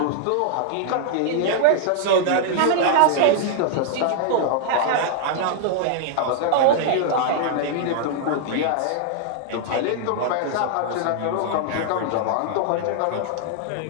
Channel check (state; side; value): different; both; correlation -0.01